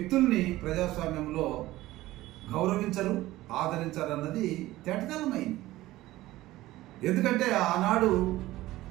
ప్రజాస్వామ్యంలో గౌరవించరు, ఆదరించరు అన్నది తేటతెల్లమైంది. ఎందుకంటే ఆనాడు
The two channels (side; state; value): left; quieter; 16.8 dB